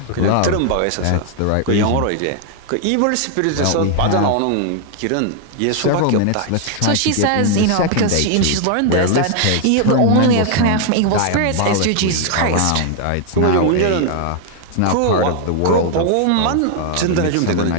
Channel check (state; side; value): different; both; correlation 0.00